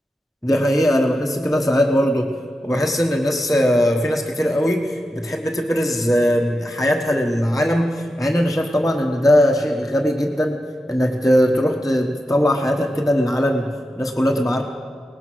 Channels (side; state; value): both; normal; correlation 0.89